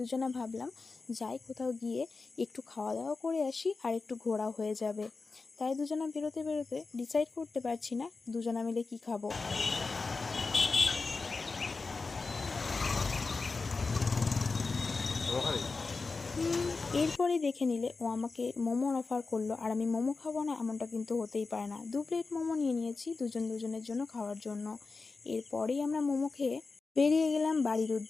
ভাবলাম যাই কোথাও গিয়ে একটু খাওয়া দাওয়া করে আসি আর একটু ঘোরা হয়ে যাবে। তাই দুজনা বেরোতে বেরোতে ডিসাইড করতে পারছি না দুজনা মিলে কি খাবো। এরপরে দেখে নিলে ও আমাকে মোমোর অফার করলো, আর আমি মোমো খাবো না এমনটা কিন্তু হতেই পারে না। 2 প্লেট মোমো নিয়ে নিয়েছি দুজনের জন্য খাওয়ার জন্য। এরপরেই আমরা মোমো খেয়ে বেরিয়ে গেলাম বাড়ির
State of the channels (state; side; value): quieter; right; 4.1 dB